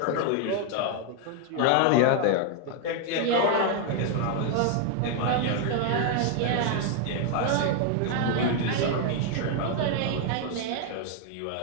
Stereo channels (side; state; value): both; different; correlation 0.00